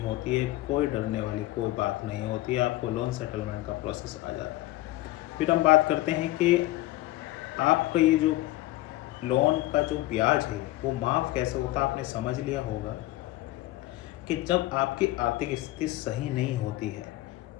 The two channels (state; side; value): quieter; right; 17.3 dB